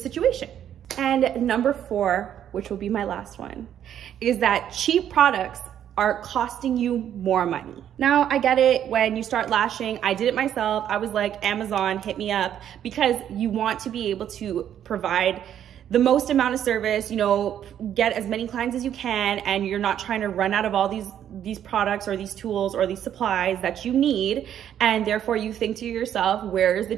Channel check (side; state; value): left; quieter; 10.1 dB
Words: And number 4, which will be my last one, is that cheap products are costing you more money. Now, I get it. When you start lashing, I did it myself. I was like, Amazon, hit me up, because you want to be able to provide the most amount of service, get as many clients as you can, and you're not trying to run out of all these products or these tools or these supplies that you need. And therefore you think to yourself, where is the